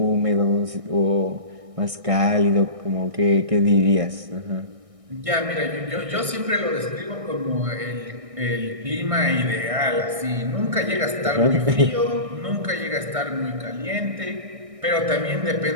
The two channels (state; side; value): late; left; 1.6 ms